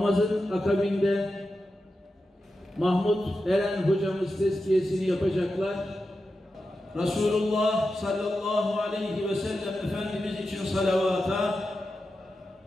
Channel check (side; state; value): both; normal; correlation 0.90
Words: akabinde Mahmut Eren hocamız tezkiyesini yapacaklar. Resulullah sallallahu aleyhi ve sellem Efendimiz için salavata,